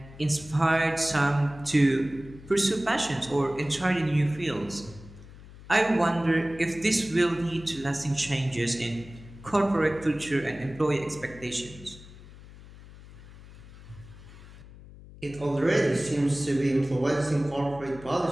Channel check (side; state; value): left; noise; hum, 18 dB below the sound